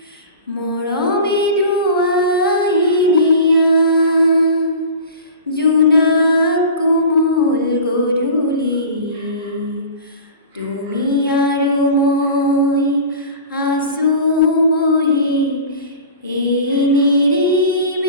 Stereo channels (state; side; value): inverted; both; correlation -0.36